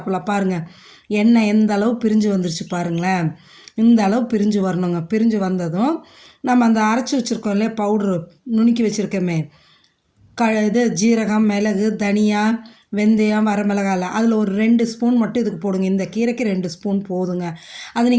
பாருங்கள், எண்ணெய் எந்த அளவு பிரிஞ்சு வந்துருச்சு பாருங்களேன். இந்த அளவு பிரிஞ்சு வரணுங்க. பிரிஞ்சு வந்ததும் நம்ம அந்த அரைச்சி வச்சுருக்கோம் இல்லையா, பவுட்ரு நுணுக்கி வச்சுருக்கோமே, இது ஜீரகம், மிளகு, தனியா, வெந்தயம், வரமிளகாய் அதில் ஒரு 2 ஸ்பூன் மட்டும் இதுக்கு போடுங்க. இந்த கீரைக்கு 2 ஸ்பூன் போதுங்க. அதை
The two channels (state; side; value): identical; both; correlation 1.00